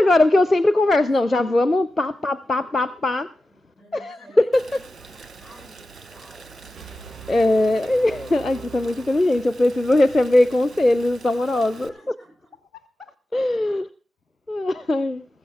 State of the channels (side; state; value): both; normal; correlation 0.94